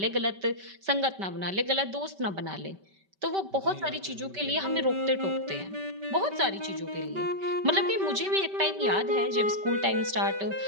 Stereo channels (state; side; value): late; left; 5.2 ms